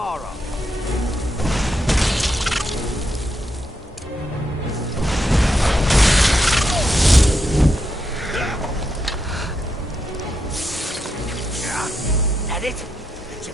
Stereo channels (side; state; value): both; normal; correlation 0.83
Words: That it? That's